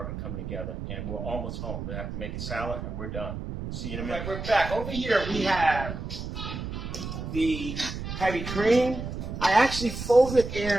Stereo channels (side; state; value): right; noise; rumble, 6 dB below the sound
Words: will be coming together, and we're almost home. We have to make a salad, and we're done. See you in a minute. We're back. Over here, we have the heavy cream. I actually folded